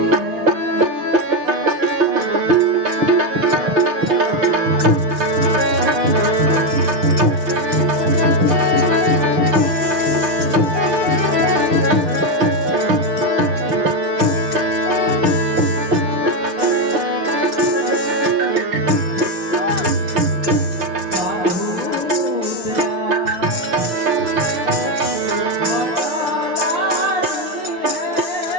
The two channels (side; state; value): left; late; 5.7 ms